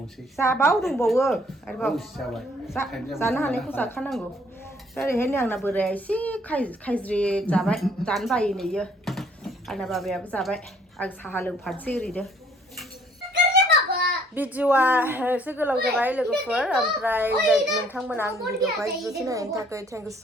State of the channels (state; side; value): normal; both; correlation 0.62